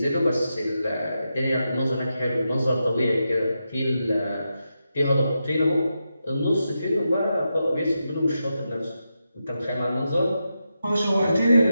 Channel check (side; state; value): both; inverted; correlation -0.87